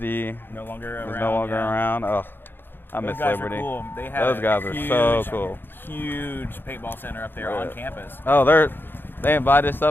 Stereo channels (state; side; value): late; right; 0.099 ms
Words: No longer around. Is no longer around. Oh, I miss Liberty. Cool. They have those guys are so cool. Huge paintball center up there on campus. Oh, they invited us